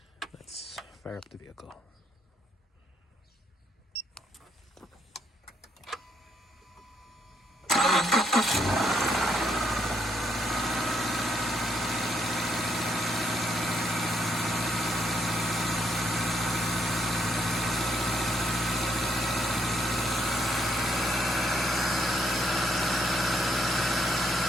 Let's fire up the vehicle.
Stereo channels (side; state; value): both; normal; correlation 0.74